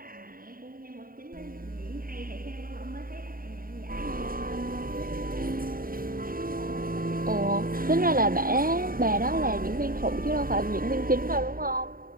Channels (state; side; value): late; left; 0.42 ms